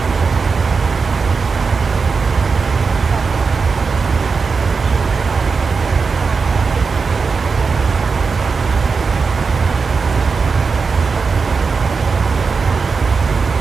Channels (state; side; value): quieter; left; 4.9 dB